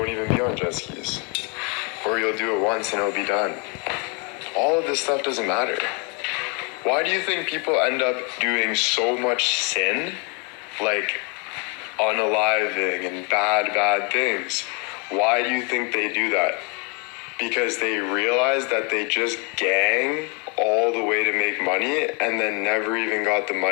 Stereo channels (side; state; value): right; quieter; 33.7 dB